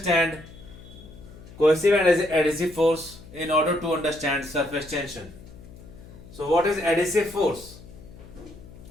cohesive and adhesive force in order to understand surface tension. So what is adhesive force?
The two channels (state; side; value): noise; left; hum, 18 dB below the sound